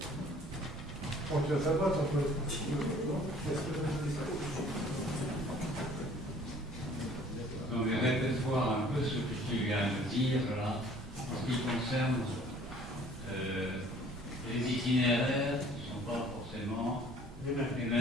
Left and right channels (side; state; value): right; noise; rumble, 13 dB below the sound